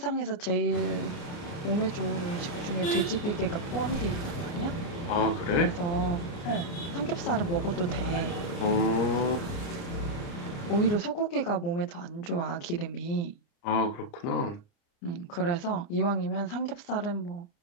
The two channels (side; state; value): right; late; 29 ms